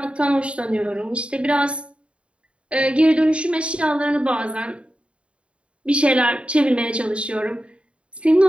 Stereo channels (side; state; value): left; late; 0.059 ms